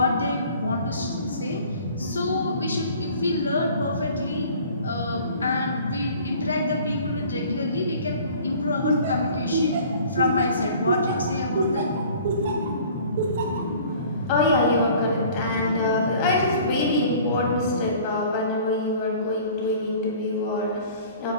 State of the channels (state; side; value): inverted; both; correlation -0.49